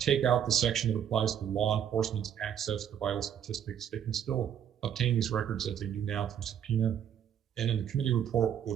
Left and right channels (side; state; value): left; quieter; 9.3 dB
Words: out the section that applies to law enforcement's access to vital statistics. They can still obtain these records as they do now through subpoena. And in the committee report